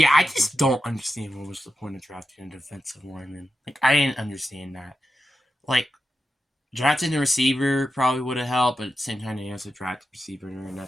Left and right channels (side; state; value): both; normal; correlation 0.89